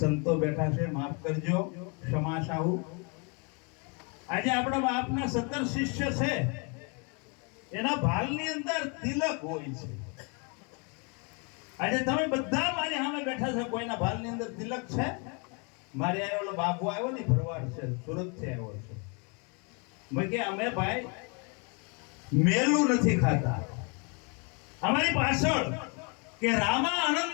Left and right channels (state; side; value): quieter; right; 33.9 dB